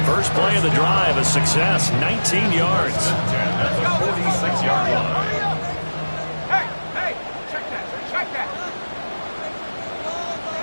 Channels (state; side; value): inverted; both; correlation -1.00